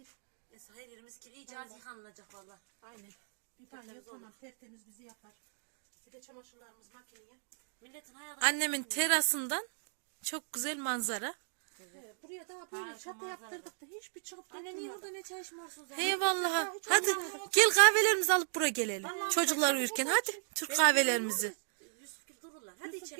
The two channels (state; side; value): silent; left; digital silence